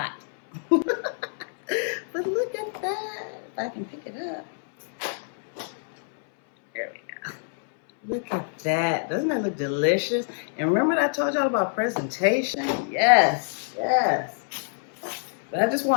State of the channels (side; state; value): right; silent; 61 dB below the other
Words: But look at that. If I can pick it up. There we go. Look at that. Doesn't that look delicious? And remember that I told y'all about presentation? Yes, yes. But I just